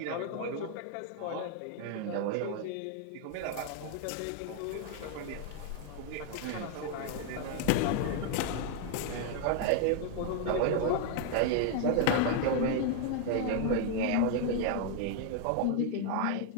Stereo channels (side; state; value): both; different; correlation 0.00